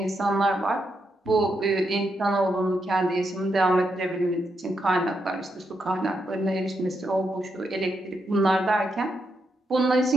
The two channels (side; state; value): both; normal; correlation 0.82